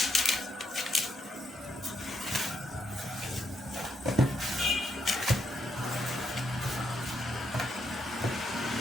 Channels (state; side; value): normal; both; correlation 0.77